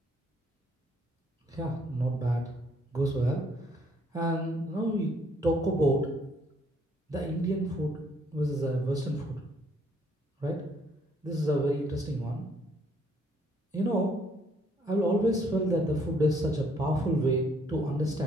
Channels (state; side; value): normal; both; correlation 0.66